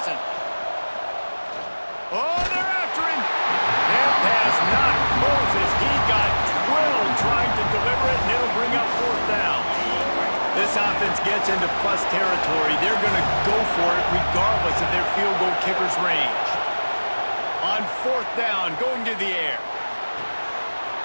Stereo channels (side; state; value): both; inverted; correlation -1.00